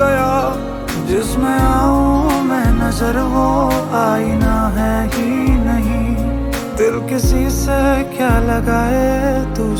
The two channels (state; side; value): identical; both; correlation 1.00